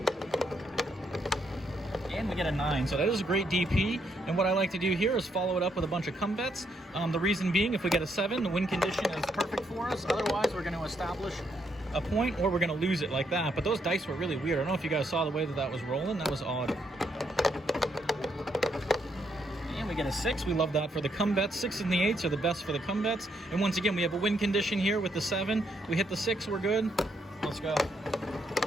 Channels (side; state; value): both; normal; correlation 0.76